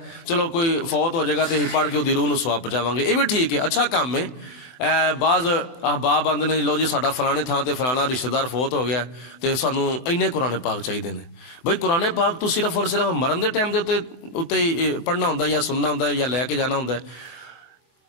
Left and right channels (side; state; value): right; late; 23 ms